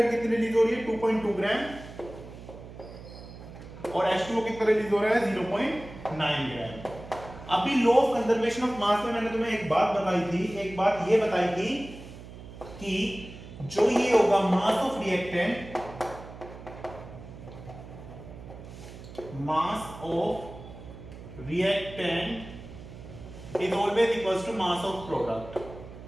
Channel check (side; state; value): right; noise; hum, 15 dB below the sound